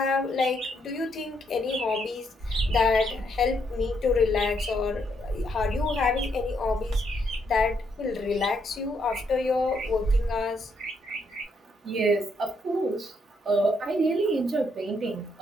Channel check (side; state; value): both; normal; correlation 0.75